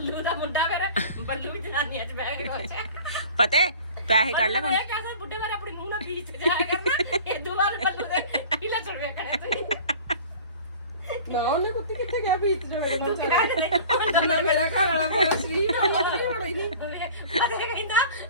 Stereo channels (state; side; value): inverted; both; correlation -0.43